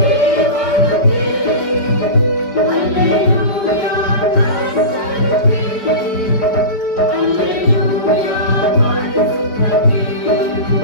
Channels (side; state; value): right; late; 5.0 ms